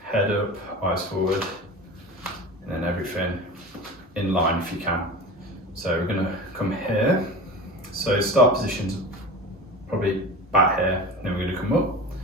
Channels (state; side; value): normal; both; correlation 0.32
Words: head up, eyes forward, and then everything in line if you can. So we're going to come here. So start positions probably back here, then we're going to come up